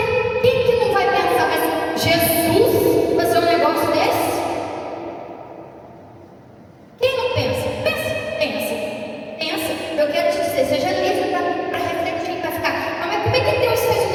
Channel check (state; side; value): identical; both; correlation 1.00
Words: quem que não vai pensar? Mas Jesus fazer um negócio desse? Quem não pensa? Pensa. Eu quero te dizer, seja livre para refletir, para ficar: mas como é que Deus fez um